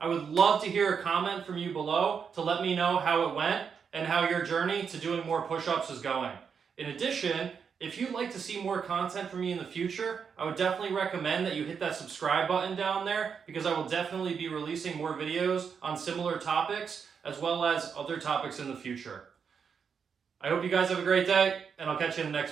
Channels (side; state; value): left; quieter; 6.5 dB